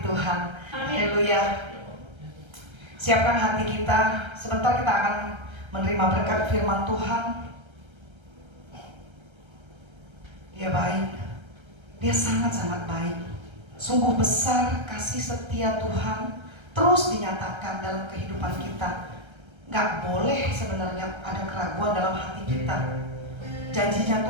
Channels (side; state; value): left; late; 1.3 ms